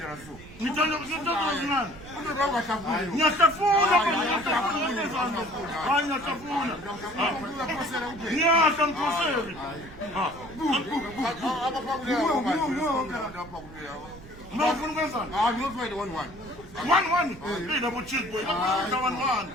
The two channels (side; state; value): right; noise; rumble, 17 dB below the sound